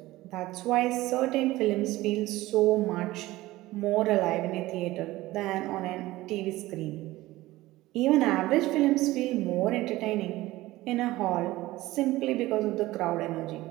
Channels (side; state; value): left; quieter; 17.8 dB